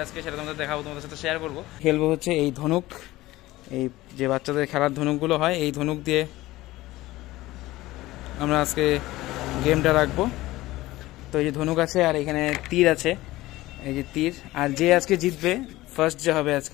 আজকে সেটা তোমাদের দেখাবো, তোমাদের সাথে শেয়ার করবো। খেলবো হচ্ছে এই ধনুক, এই যে বাচ্চাদের খেলার ধনুকগুলো হয়, এই ধনুক দিয়ে আমরা আজকে গেমটা রাখবো। তো এই যে ধনুক আছে আর এখানে তীর আছে, এই যে তীর। আর যে আজকে জিতবে, ফার্স্ট যে হবে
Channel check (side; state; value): right; quieter; 17.8 dB